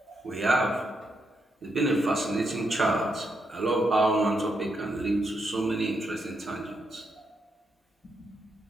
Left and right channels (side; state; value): both; normal; correlation 0.81